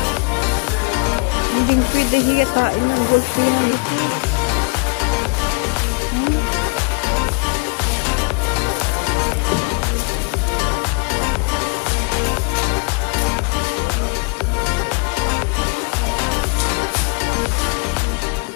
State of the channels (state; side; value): quieter; right; 30.7 dB